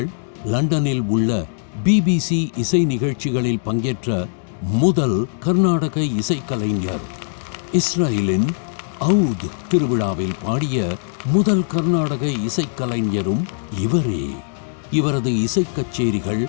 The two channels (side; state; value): right; silent; digital silence